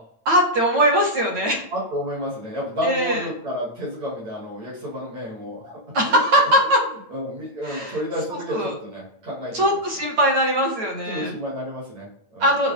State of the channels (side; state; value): left; late; 9.0 ms